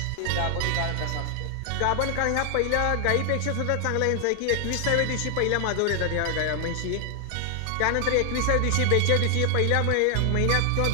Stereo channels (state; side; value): different; both; correlation 0.00